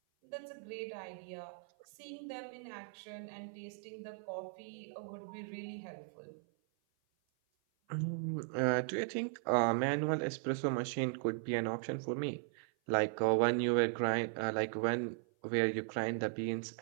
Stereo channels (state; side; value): silent; left; 53 dB below the other